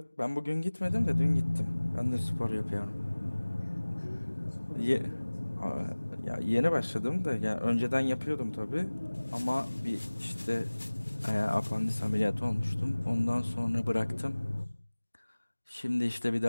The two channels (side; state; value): both; inverted; correlation -1.00